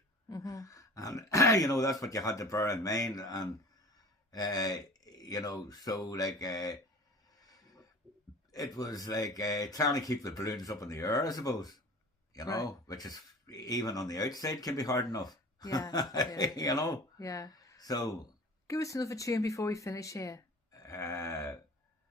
and that's what you had to bear in mind, and. So it was trying to keep the balloons up in the air, I suppose, right. Which is even on the outside can be hard enough. Yeah. Yeah. So give us another tune before we finish here.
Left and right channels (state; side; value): normal; both; correlation 0.42